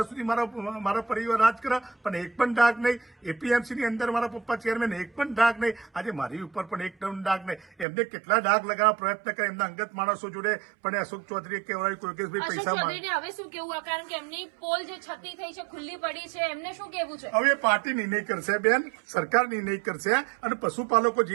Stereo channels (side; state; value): left; drops out; at 7.9 s